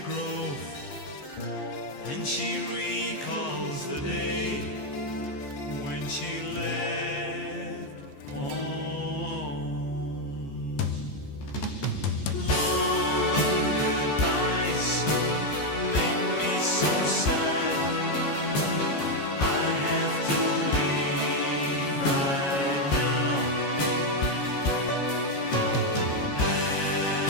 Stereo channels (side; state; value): right; late; 14 ms